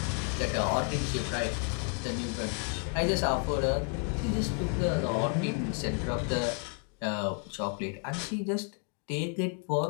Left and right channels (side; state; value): right; quieter; 38.5 dB